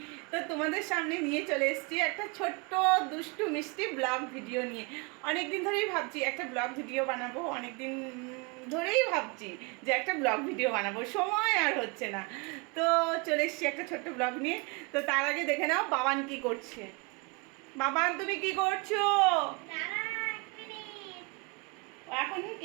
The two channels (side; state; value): left; quieter; 30.1 dB